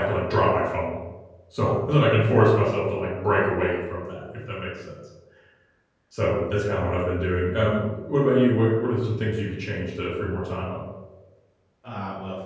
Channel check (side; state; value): both; identical; correlation 1.00